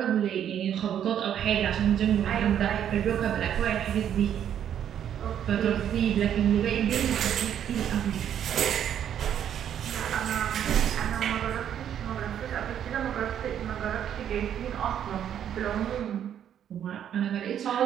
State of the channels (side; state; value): left; quieter; 9.7 dB